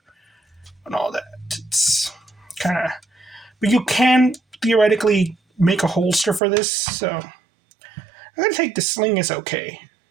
and all that. It's kind of, but you can theoretically make a holster for this. So I'm gonna take the sling as okay.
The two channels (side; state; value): left; drops out; at 6.4 s